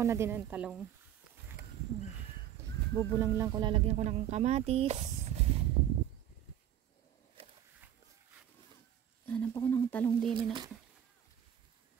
na din ng talong. Bubulang lang ko, lalagyan ko ng kamatis. Hanap ako ng talong din na.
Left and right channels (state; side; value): quieter; left; 10.6 dB